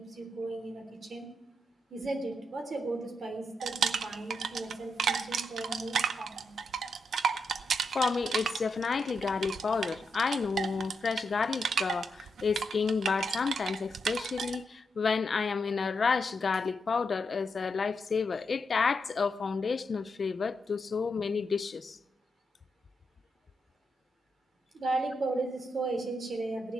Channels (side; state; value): both; normal; correlation 0.84